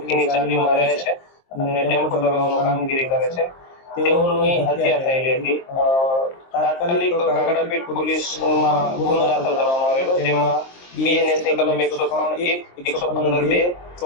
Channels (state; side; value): late; right; 23 ms